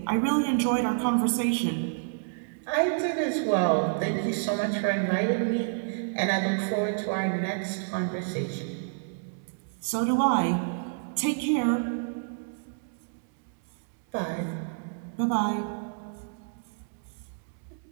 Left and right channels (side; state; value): left; silent; digital silence